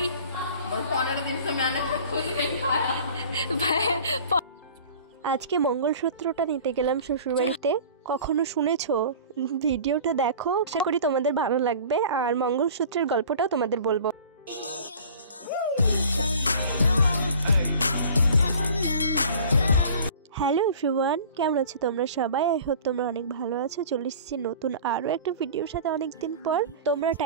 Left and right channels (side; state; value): both; inverted; correlation -0.44